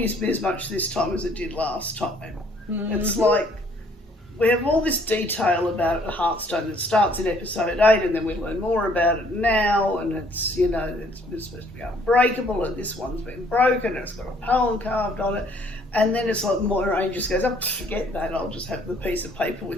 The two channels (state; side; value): normal; both; correlation 0.62